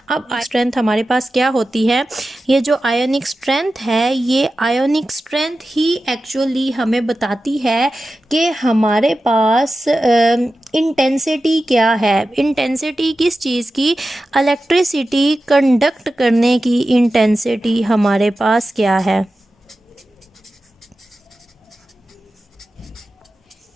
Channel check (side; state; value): both; normal; correlation 0.93